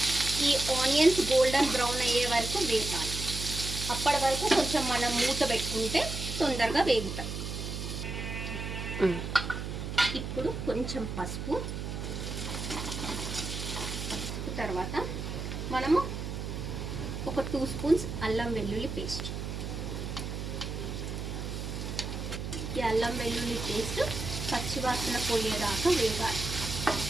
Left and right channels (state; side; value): noise; right; hum, 5 dB below the sound